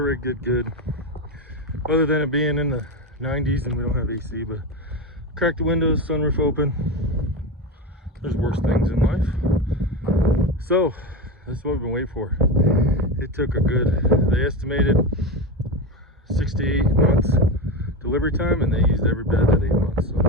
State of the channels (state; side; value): normal; both; correlation 0.19